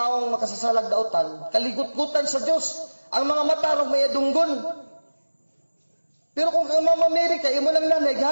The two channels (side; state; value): both; inverted; correlation -1.00